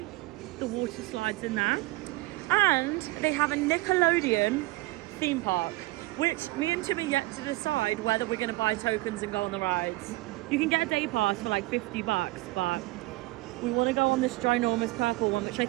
the water slides in there. And they have a Nickelodeon theme park, which me and Tim are yet to decide whether we're going to buy tokens and go on the rides. You can get a day pass for like $50, but we want to go on this ginormous purple one, which I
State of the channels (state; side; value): quieter; left; 21.0 dB